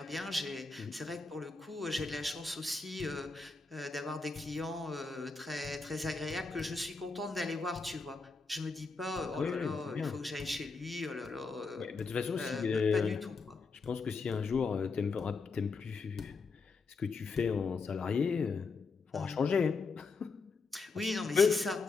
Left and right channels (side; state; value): right; quieter; 4.3 dB